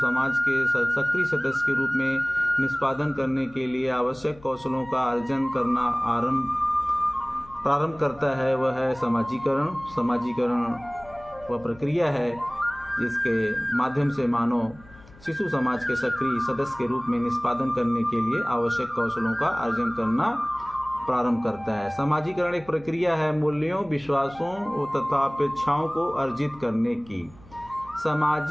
के सक्रिय सदस्य के रूप में निष्पादन करने के लिए आवश्यक कौशलों का अर्जन करना प्रारंभ करता है, वह है समाजीकरण। समाजीकरण वह प्रक्रिया है जिसके माध्यम से मानव शिशु समाज के सक्रिय सदस्य के रूप में निष्पादन करने के लिए आवश्यक कौशलों का अर्जन करना प्रारंभ करता है। समाजीकरण एक प्रक्रिया है मूल्यों, विश्वासों तथा अपेक्षाओं को अर्जित करने की।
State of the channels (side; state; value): left; noise; hum, 23 dB below the sound